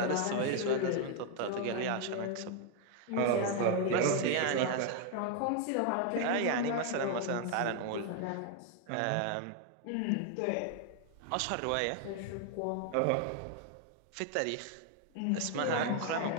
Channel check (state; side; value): different; both; correlation 0.00